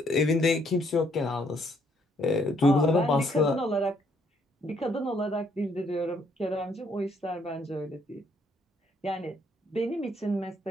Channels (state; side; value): normal; both; correlation 0.69